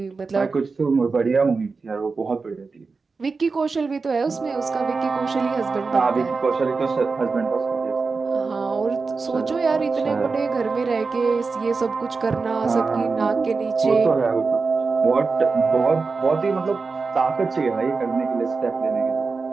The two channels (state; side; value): quieter; left; 4.4 dB